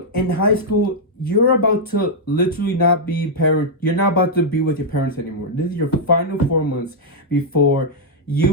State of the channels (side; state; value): both; normal; correlation -0.05